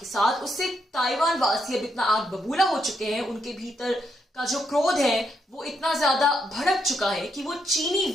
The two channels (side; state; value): both; normal; correlation 0.79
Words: साथ, उससे ताइवान वासी अब इतना आग बबूला हो चुके हैं, उनके भीतर का जो क्रोध है वो इतना ज्यादा भड़क चुका है कि वो चीनी